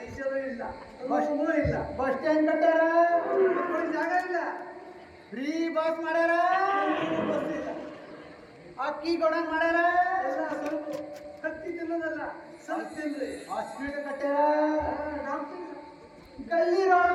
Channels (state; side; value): identical; both; correlation 1.00